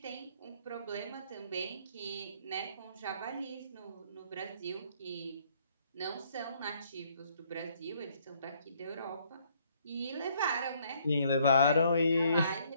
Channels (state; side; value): inverted; both; correlation -0.65